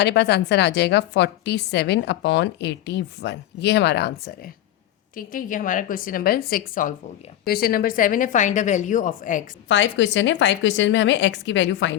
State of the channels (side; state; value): right; quieter; 12.7 dB